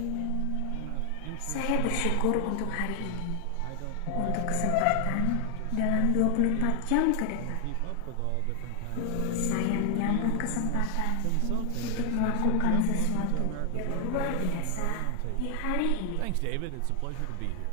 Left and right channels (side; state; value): both; different; correlation 0.00